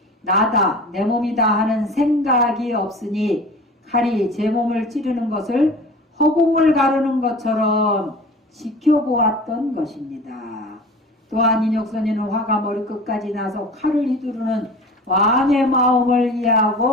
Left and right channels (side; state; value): both; normal; correlation 0.39